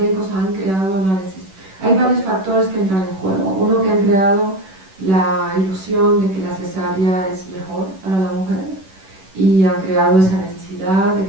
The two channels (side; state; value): left; late; 11 ms